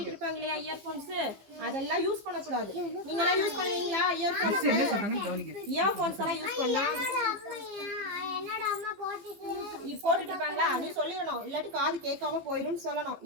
இருப்பாங்க இல்லையா இயர்ஃபோன்ஸ், அதெல்லாம் யூஸ் பண்ணக்கூடாது. நீங்களாம் யூஸ் பண்ணுவீங்களா இயர்ஃபோன்ஸ்? இயர்ஃபோன்ஸ் எல்லாம் யூஸ் பண்ணலாம். போட்டுட்டு இருப்பாங்களா, நீ சொல்லிடணும், இல்லாட்டி காது கேட்காம போயிடும் சொல்லணும்.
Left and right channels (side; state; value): left; late; 15 ms